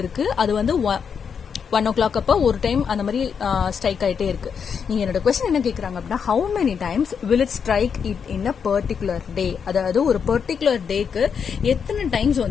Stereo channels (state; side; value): quieter; right; 6.7 dB